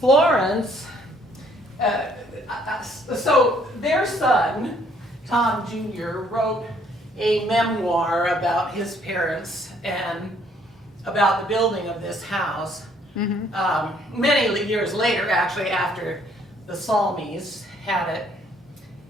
so their son, Tom Jr., wrote a memoir about his parents and about the building of this house. Many years later, actually, after the Salmies had it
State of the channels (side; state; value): both; normal; correlation 0.64